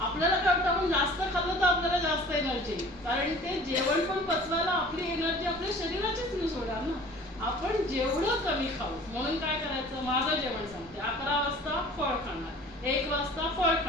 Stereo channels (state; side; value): normal; both; correlation 0.46